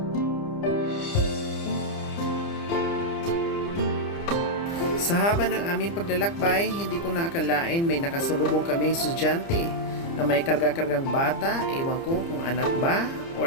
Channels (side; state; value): right; late; 30 ms